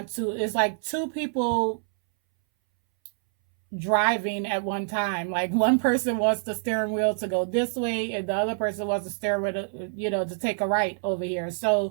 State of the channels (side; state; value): left; silent; 61 dB below the other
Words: to. It's like two people driving at one time. Like one person wants the steering wheel to go this way and the other person wants the steering wheel to, to take a right over here.